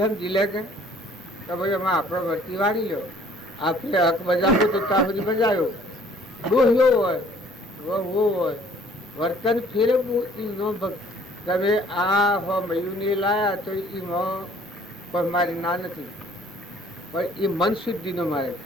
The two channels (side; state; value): both; normal; correlation 0.57